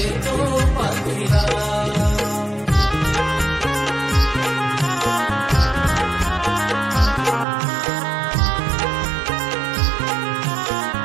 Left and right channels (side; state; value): left; drops out; at 7.5 s